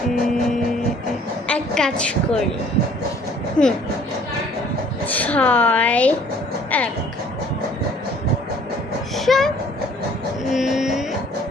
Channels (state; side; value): normal; both; correlation 0.56